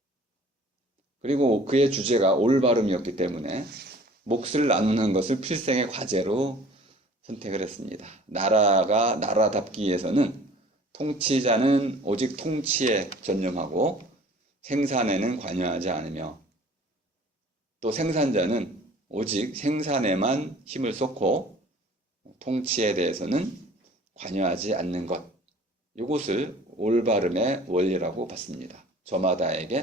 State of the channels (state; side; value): normal; both; correlation 0.49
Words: 그리고 그의 주제가 올바름이었기 때문에 몫을 나누는 것을 필생의 과제로 선택을 했습니다. 나라가 나라답기 위해서는 통치자는 오직 통치에 전념하고 생산에는 관여하지 않으며 또 생산자는 오직 생산에만 힘을 쏟고 통치에 대해서는 관여하지 않는 것. 이것을 올바름의 원리라고 봤습니다.